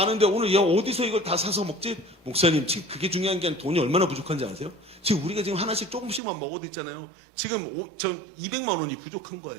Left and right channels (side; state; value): left; drops out; at 6.2 s